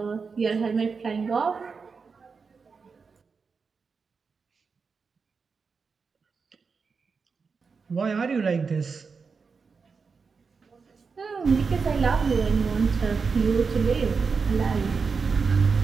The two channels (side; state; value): left; quieter; 5.1 dB